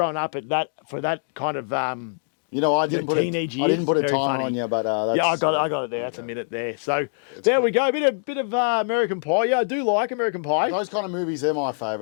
up, for that kind of I didn't put teenage I years, didn't put a very timer funny. on you, but that's, I got it there. That's a minute there. So there we go. Bit of American Pie. Yeah, I do like American Pie. Those kind of movies, they're my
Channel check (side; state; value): right; silent; digital silence